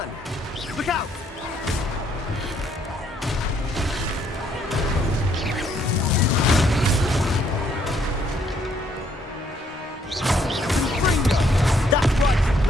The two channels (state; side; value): normal; both; correlation 0.68